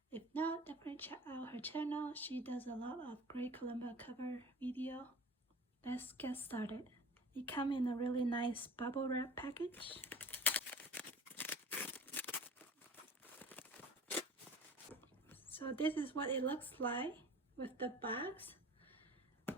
If not, definitely check out her channel. She does a lot of great kalimba cover video. Let's get started. It comes in a really nice bubble wrap package. So this is what it looks like with the box.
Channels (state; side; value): normal; both; correlation 0.42